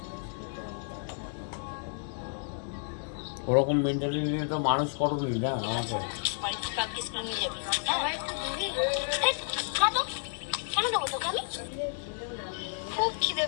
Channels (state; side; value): silent; right; 57 dB below the other